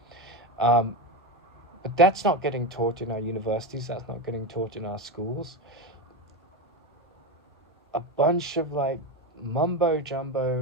But that's not getting taught in our universities. That's not getting taught in our schools. A bunch of mumbo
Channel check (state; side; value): normal; both; correlation 0.17